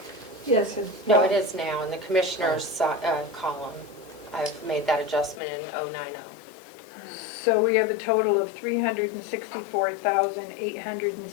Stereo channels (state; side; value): drops out; right; at 5.4 s